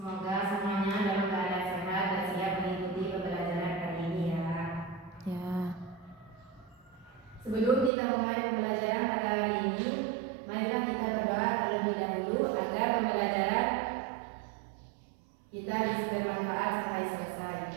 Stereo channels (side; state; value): left; drops out; at 7.9 s